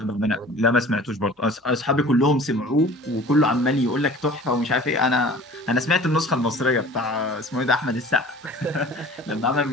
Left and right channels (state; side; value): normal; both; correlation 0.45